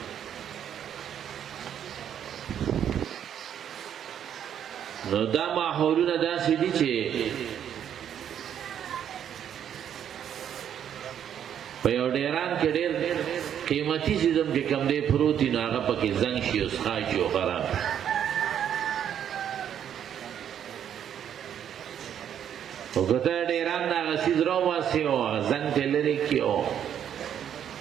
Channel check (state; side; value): quieter; left; 9.4 dB